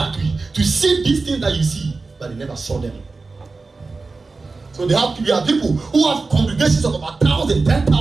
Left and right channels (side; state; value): left; quieter; 3.9 dB